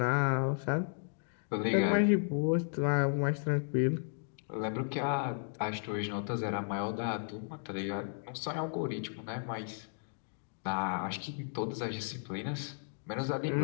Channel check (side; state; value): right; silent; digital silence